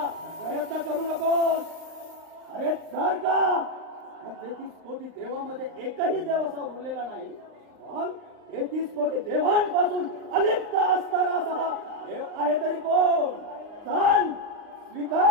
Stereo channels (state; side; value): late; left; 39 ms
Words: प्रयत्न करू नकोस. अरे जर का 33 कोटी देवामध्ये एकही देव असा उरलेला नाही, मग 33 कोटी देवांपासून अलिप्त असणारा असा देव आहे तरी कोण? सांग,